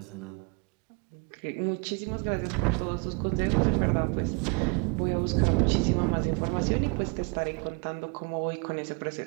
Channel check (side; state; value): left; quieter; 33.2 dB